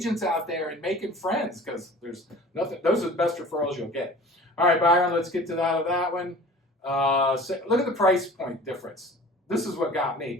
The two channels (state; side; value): normal; both; correlation 0.43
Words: out there and making friends because there's nothing. Those are the best referrals you'll get. All right, Byron, let's get to that one. So look at the price point difference. This is what got